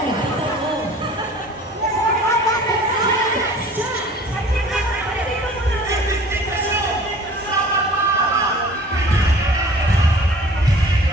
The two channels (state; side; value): normal; both; correlation 0.47